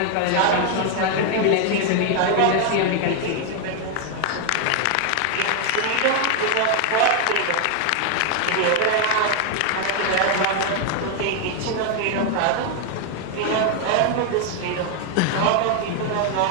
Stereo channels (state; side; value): different; both; correlation 0.00